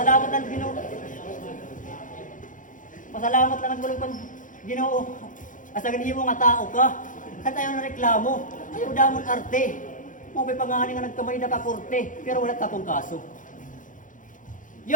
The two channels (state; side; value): late; right; 0.38 ms